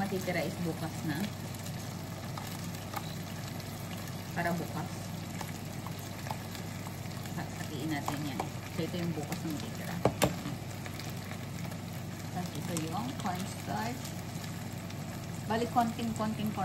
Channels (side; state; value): both; identical; correlation 1.00